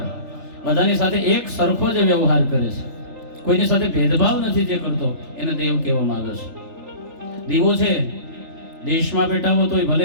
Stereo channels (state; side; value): late; left; 3.4 ms